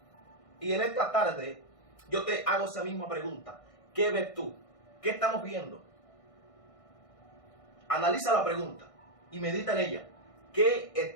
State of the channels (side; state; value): right; late; 1.6 ms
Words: Y en esta tarde yo te hago esa misma pregunta: ¿qué ves tú? ¿Qué estamos viendo? Analiza la pregunta y medita en ella. ¿Qué